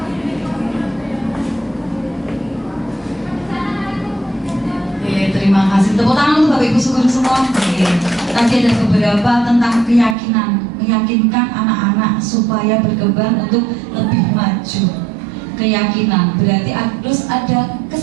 Terima kasih. Tepuk tangan untuk Bapak Ibu Syukur semua. Tadi ada beberapa tentang keyakinan, meyakinkan anak-anak supaya berkembang untuk lebih maju. Keyakinan berarti harus ada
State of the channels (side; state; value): left; drops out; at 10.2 s